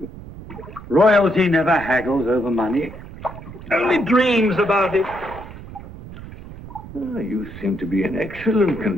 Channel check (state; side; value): noise; right; rumble, 14 dB below the sound